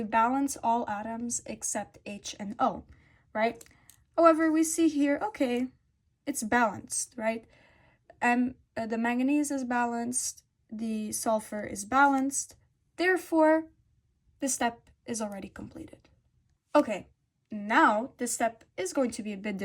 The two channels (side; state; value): both; identical; correlation 1.00